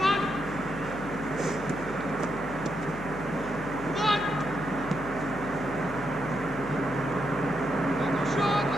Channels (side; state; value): left; noise; hum, 12 dB below the sound